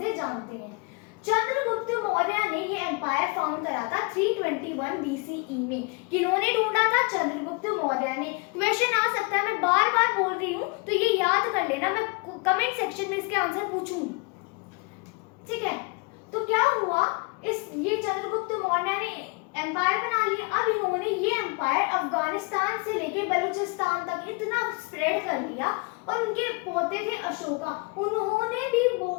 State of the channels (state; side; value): quieter; right; 30.0 dB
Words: जानते हैं। चंद्रगुप्त मौर्य ने ये एम्पायर फाउंड करा था 321 BCE में। किन्होंने ढूंढा था? चंद्रगुप्त मौर्य ने। क्वेश्चन आ सकता है, मैं बार बार बोल रही हूँ तो ये याद कर लेना, मैं कमेंट सेक्शन में इसके आंसर पूछूंगी। ठीक है। तो क्या हुआ, ये चंद्रगुप्त मौर्य ने एम्पायर बना लिया। अब इन्होंने ये एम्पायर अफगानिस्तान से लेके बलूचिस्तान तक इतना स्प्रेड कर लिया, और उनके पोते थे अशोका, उन्होंने भी